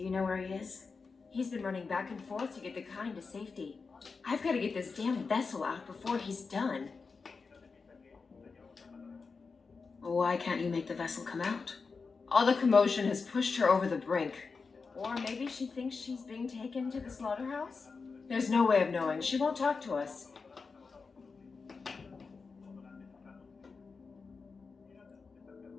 you know where he is? He's been running back and forth to get the kind to safety. I've got to get this damn vessel out before he's done. Why can't you make the vessel come out? All the commotion has pushed her over the brink. Or maybe she thinks she's being taken to the slaughterhouse? There's no way of knowing. She won't talk to us.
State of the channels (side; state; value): right; quieter; 4.7 dB